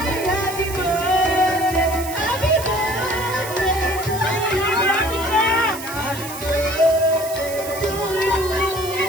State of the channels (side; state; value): right; noise; hiss, 11 dB below the sound